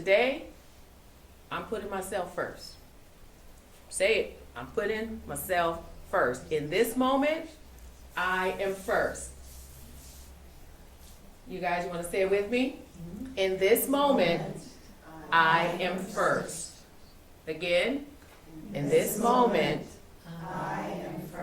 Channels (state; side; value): identical; both; correlation 1.00